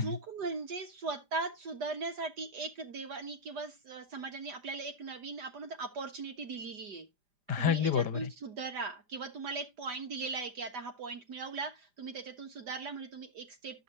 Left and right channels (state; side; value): late; left; 5.0 ms